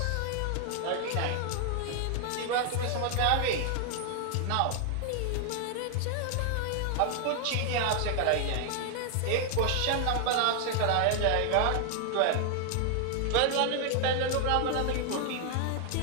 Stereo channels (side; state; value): both; different; correlation 0.00